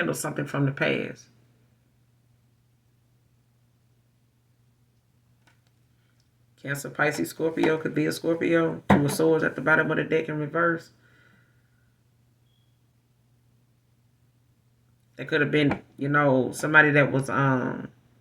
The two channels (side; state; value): both; identical; correlation 1.00